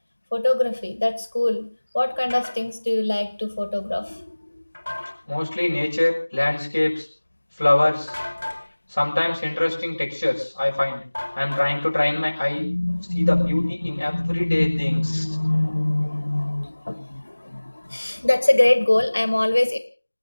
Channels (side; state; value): both; inverted; correlation -1.00